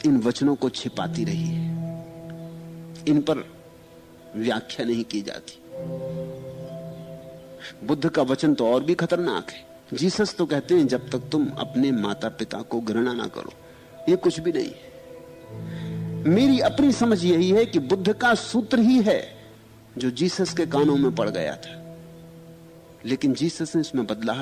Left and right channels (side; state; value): both; identical; correlation 1.00